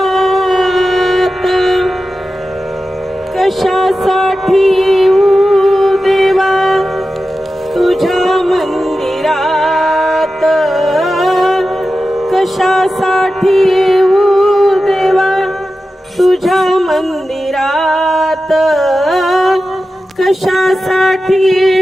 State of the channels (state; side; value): normal; both; correlation 0.93